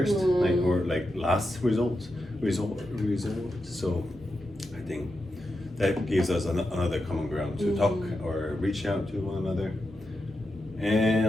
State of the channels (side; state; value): both; normal; correlation 0.88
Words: or last result. So I think that gives us another common ground to talk or reach out to one another, and